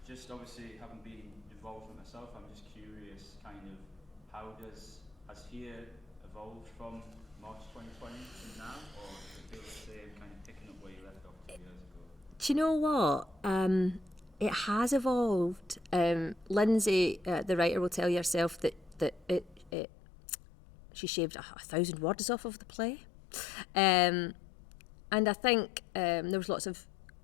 Just obviously having been involved with myself, I'm just curious, kind of, has here evolved from March 2020 to now, or does it feel the same, kind of picking up where you left off 2 years ago? Do you know what? It has evolved. Lindsay, the writer, will tell you herself that she shaved 1,000 words off of the play. And I think there was lots of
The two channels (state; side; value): drops out; right; at 19.7 s